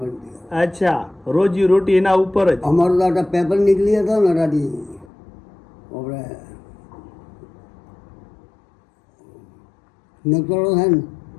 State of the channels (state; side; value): drops out; right; at 5.1 s